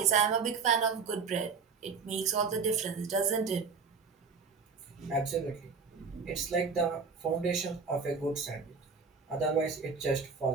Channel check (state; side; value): quieter; left; 5.2 dB